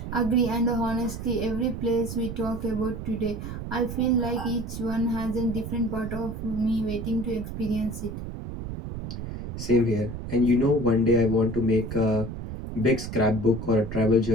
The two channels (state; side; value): noise; right; rumble, 7 dB below the sound